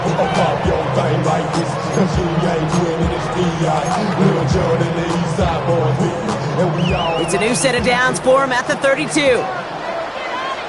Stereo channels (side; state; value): both; identical; correlation 1.00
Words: It's a new set of downs for him at the 32.